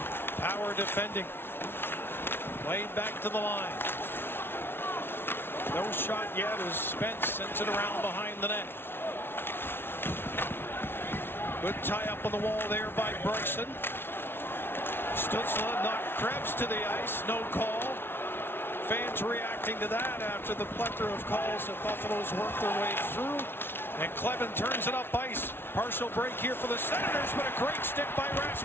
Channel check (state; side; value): late; right; 0.11 ms